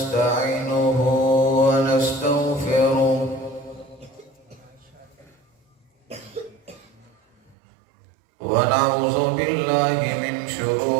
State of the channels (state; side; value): drops out; left; at 7.6 s